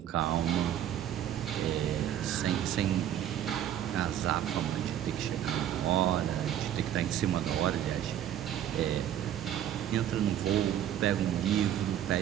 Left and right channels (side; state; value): left; quieter; 10.9 dB